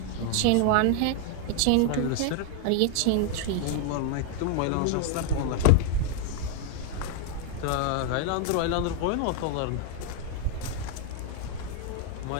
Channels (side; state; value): both; different; correlation 0.00